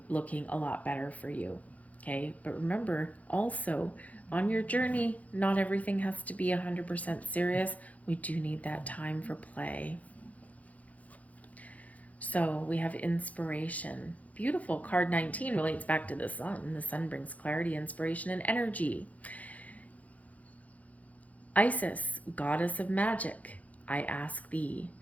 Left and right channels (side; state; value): right; late; 0.071 ms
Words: looking a lot better for you, okay? But remember, also, on your journey, not everything has to be 100% serious. We do need that time for play. So we have inspiration. Beautiful. Card 19 relates back to the sun. The sun brings clarity, inspiration, and energy. Isis, goddess of magic, I ask thee